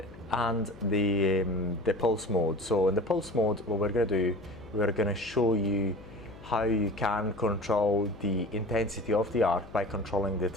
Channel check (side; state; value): left; noise; hum, 19 dB below the sound